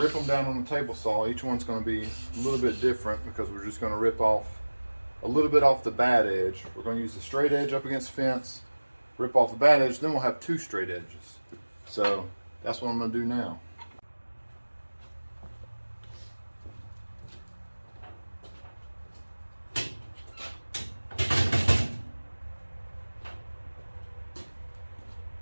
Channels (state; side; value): inverted; both; correlation -1.00